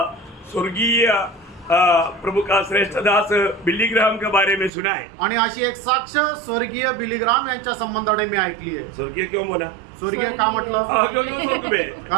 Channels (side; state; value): left; drops out; at 4.7 s